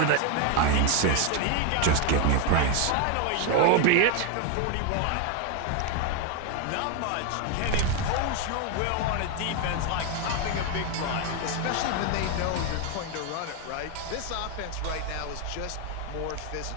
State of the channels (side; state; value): both; different; correlation 0.01